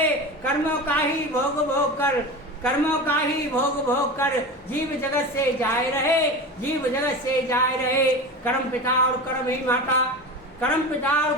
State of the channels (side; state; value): both; normal; correlation 0.28